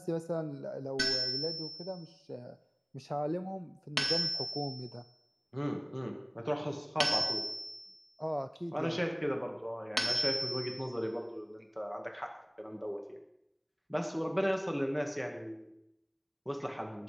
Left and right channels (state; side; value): identical; both; correlation 1.00